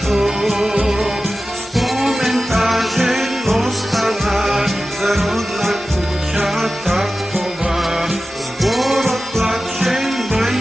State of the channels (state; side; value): normal; both; correlation 0.94